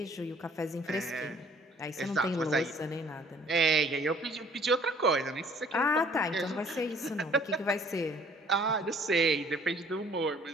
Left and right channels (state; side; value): normal; both; correlation 0.56